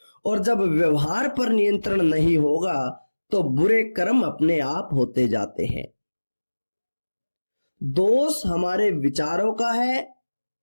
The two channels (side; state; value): both; inverted; correlation -1.00